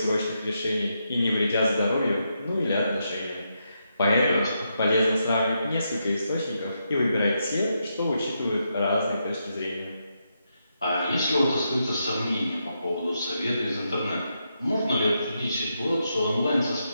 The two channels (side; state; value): both; inverted; correlation -0.82